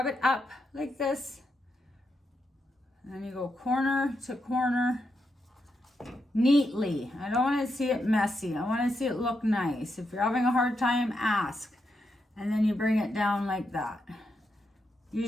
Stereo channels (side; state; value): both; normal; correlation 0.83